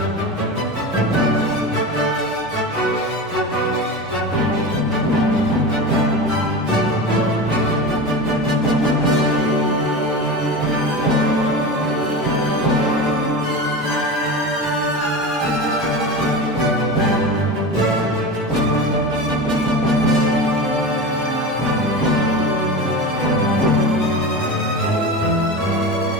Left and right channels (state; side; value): normal; both; correlation 0.26